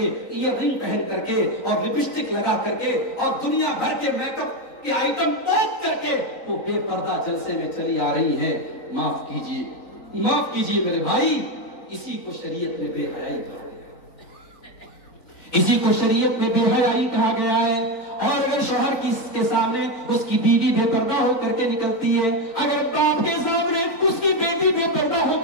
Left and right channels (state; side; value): late; right; 3.9 ms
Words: ایئر رنگ پہن کر کے، اور لپسٹک لگا کر کے، اور دنیا بھر کے میک اپ کے آئٹم پوچھ کر کے وہ بے پردہ جلسے میں چلی آ رہی ہیں. معاف کیجیے میرے بھائی، اسی کو شریعت میں بے حیائی کہا گیا، اسی کو شریعت میں بے حیائی کہا گیا ہے. اور اگر شوہر کے سامنے اس کی بیوی بے پردہ ہو کر کے نکلتی ہے، اگر باپ کے سامنے اس کی بیٹی بے پردہ ہو